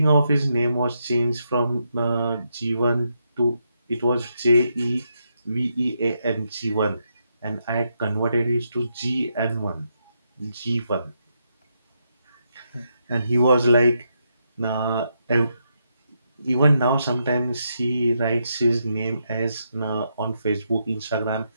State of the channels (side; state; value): both; inverted; correlation -0.80